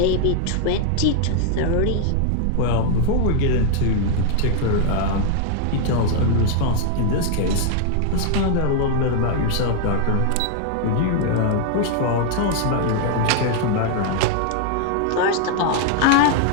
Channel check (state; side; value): different; both; correlation 0.00